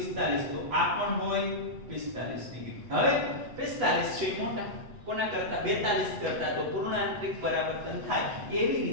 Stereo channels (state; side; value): late; left; 8.1 ms